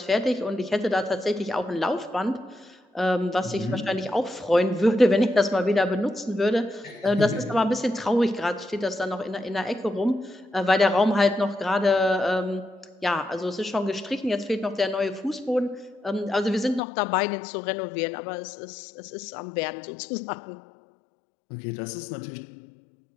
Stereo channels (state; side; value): drops out; right; at 16.8 s